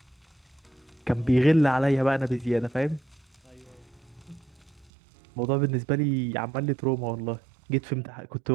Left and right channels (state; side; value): drops out; left; at 4.9 s